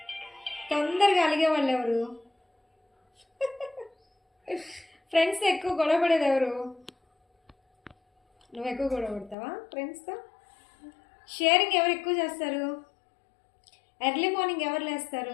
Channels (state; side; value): drops out; right; at 9.3 s